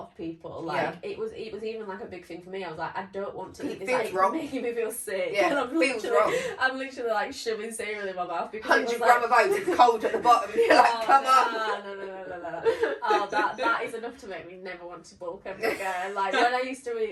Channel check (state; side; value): identical; both; correlation 1.00